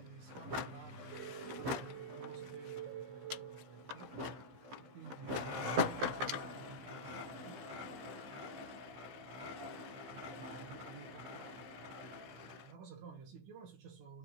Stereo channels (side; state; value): left; late; 15 ms